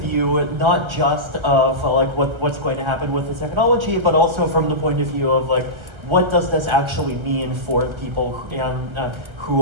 not just of what's going to happen with the technology, but also from the point of view of what does this actually mean for people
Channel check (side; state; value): left; late; 1.3 ms